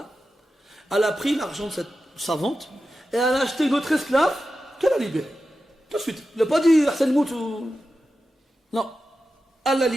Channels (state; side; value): normal; both; correlation 0.92